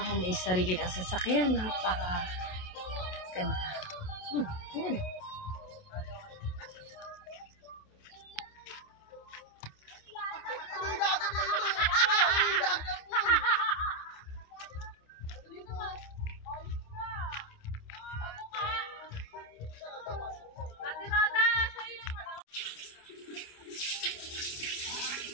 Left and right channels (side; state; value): right; late; 28 ms